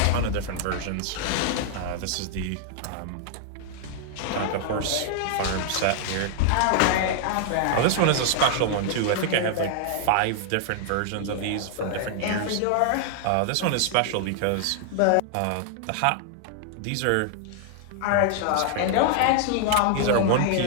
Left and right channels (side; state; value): both; different; correlation 0.00